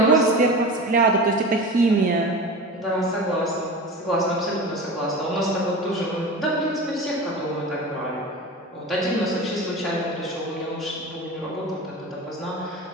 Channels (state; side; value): normal; both; correlation 0.31